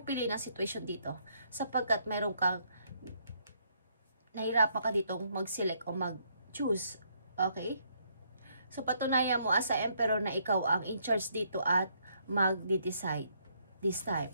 pili ng situation dito. Sapagkat meron kang nahirapan ka ditong mag-select o mag-choose. Okay? So, patunayan mo as a Emperor na ikaw ang in charge dito at mag-decide this time.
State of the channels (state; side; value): inverted; both; correlation -0.71